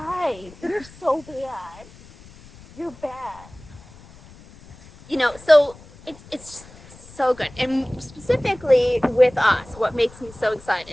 you're so bad. You're bad. So it's so good. And specifically with us, what makes me so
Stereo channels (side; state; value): left; noise; rumble, 22 dB below the sound